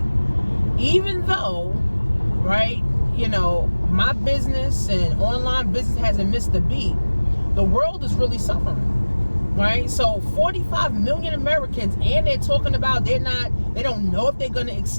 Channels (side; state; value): both; inverted; correlation -1.00